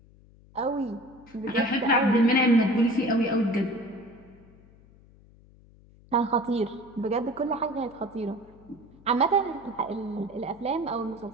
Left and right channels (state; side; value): noise; left; hum, 26 dB below the sound